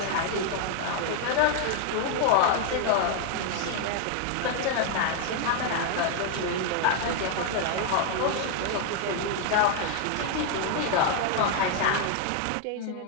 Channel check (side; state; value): both; different; correlation 0.00